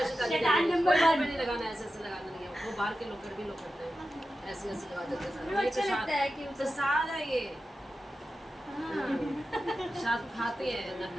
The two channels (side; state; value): both; normal; correlation 0.92